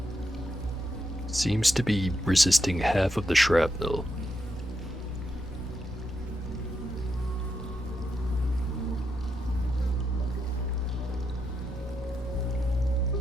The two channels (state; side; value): normal; both; correlation 0.83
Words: seems to be resisting half of the shrapnel.